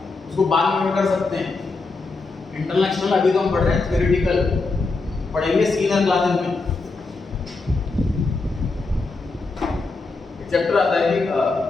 उसको बाद में कर सकते हैं। इंटरनल एक्सटर्नल अभी तो हम पढ़ रहे हैं थ्योरेटिकल, पढ़ेंगे सीनियर क्लासेस में। चैप्टर आता है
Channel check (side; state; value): right; quieter; 3.7 dB